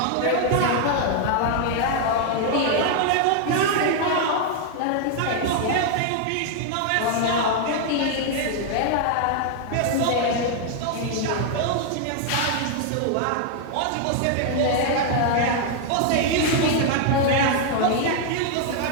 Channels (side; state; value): both; different; correlation 0.00